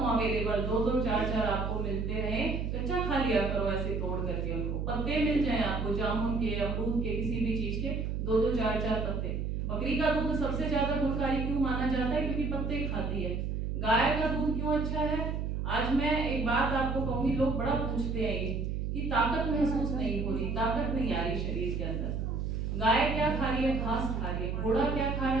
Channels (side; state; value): right; noise; hum, 2 dB below the sound